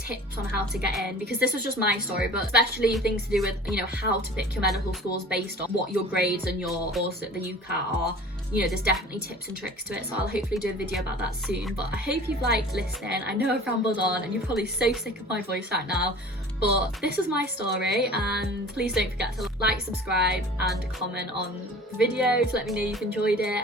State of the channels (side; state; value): both; normal; correlation 0.43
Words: on how to get in, because this was just my story, but especially things to do with, you know, how to pick your medical schools based on what your grades and your course at the UCAT are. You know, there's definitely tips and tricks to it, so I'll hopefully do a video about that soon. But I hope you've liked listening. I know I've rambled on and you're probably so sick of my voice right now, but this is my story, and please don't forget to like, subscribe and comment on the video to let me know you've enjoyed it,